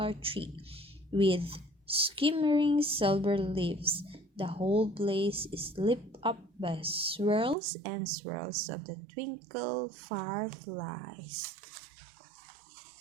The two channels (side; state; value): left; drops out; at 7.6 s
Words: tree with shimmering silver leaves. The whole place is lit up by swirls and swirls of the twinkle fireflies.